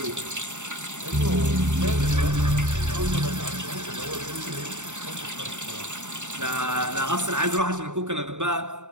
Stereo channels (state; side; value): late; left; 0.84 ms